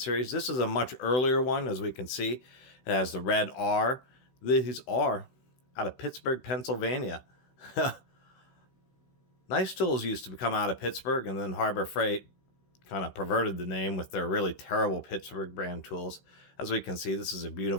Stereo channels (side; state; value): right; late; 16 ms